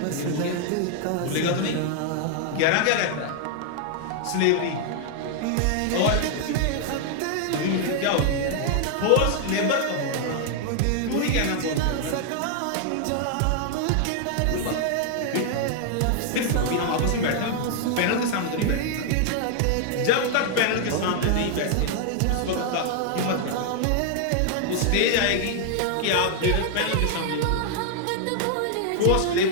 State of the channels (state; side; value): different; both; correlation 0.00